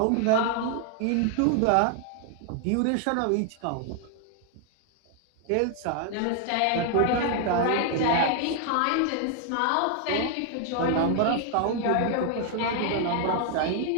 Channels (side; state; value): both; different; correlation 0.00